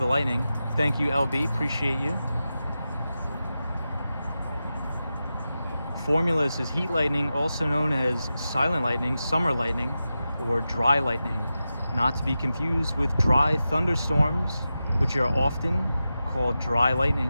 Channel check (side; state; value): both; inverted; correlation -0.92